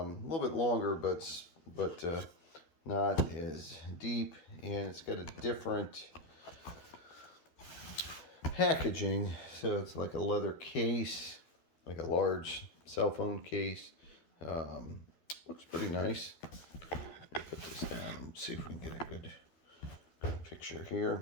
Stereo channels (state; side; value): late; right; 12 ms